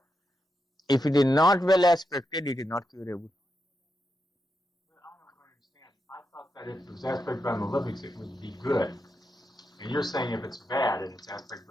If it is not well aspected, it is not curable. But I don't understand. I thought that if it was aspected by malefics, it would be good. And you're saying if it's bad and it's aspected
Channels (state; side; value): normal; both; correlation 0.86